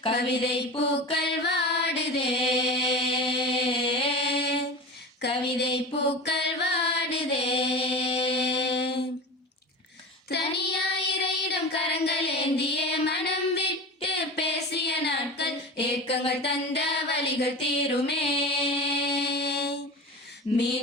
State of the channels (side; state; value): both; normal; correlation 0.30